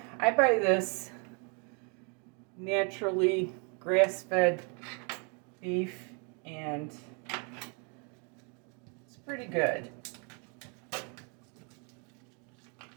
I buy this naturally grass-fed beef, and it's pretty good.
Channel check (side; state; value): left; quieter; 36.3 dB